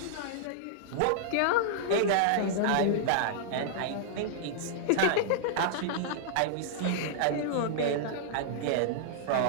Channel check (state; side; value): different; both; correlation -0.02